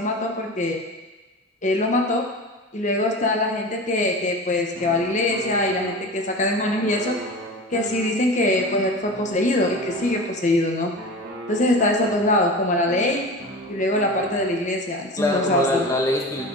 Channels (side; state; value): both; normal; correlation 0.31